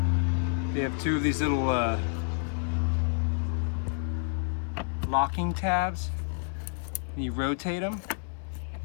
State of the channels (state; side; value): silent; right; 57 dB below the other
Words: They have 2 of these little locking tabs. You rotate them